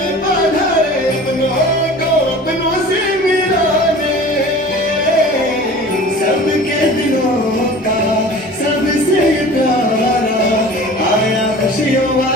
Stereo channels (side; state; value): both; normal; correlation 0.41